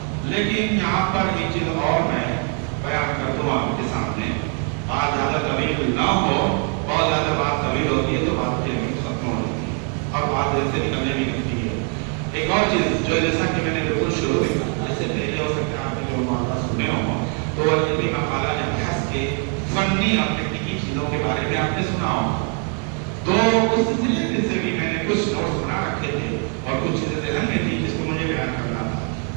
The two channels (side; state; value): left; quieter; 40.0 dB